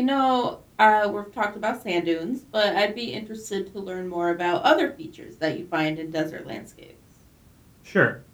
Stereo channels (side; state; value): both; identical; correlation 1.00